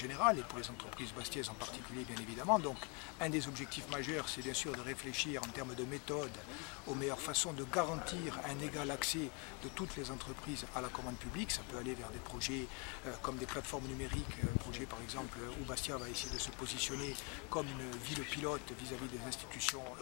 et pour les entreprises bastiaises en particulier, bien évidemment. Donc un des objectifs majeurs, c'est bien sûr de réfléchir en termes de méthode aux meilleures façons de garantir un égal accès de toutes les entreprises à la commande publique. Ça peut aller vers des projets comme des plateformes numériques, un projet par exemple où Bastia va essayer de se positionner comme une ville pilote vis-à-vis des institutions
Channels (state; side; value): quieter; right; 33.2 dB